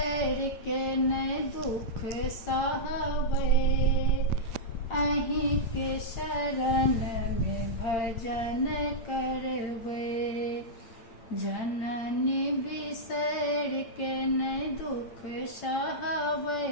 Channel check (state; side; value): late; right; 8.7 ms